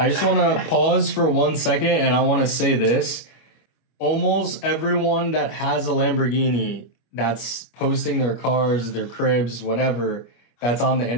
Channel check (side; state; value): right; late; 25 ms